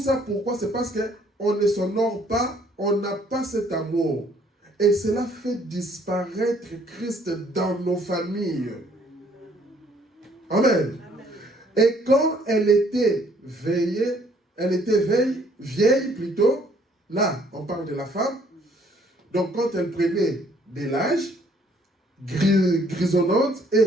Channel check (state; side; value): normal; both; correlation 0.63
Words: pourquoi? C'est parce qu'on ne s'honore pas, on n'a pas cet amour. Et cela fait disparaître Christ dans nos familles. Amen. Et quand elle était vieille plutôt, là, on parle de la femme, donc quand elle prenait de l'âge, grisonnante et